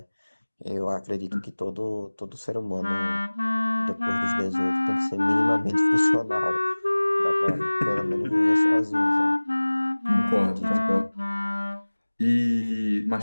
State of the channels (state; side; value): inverted; both; correlation -1.00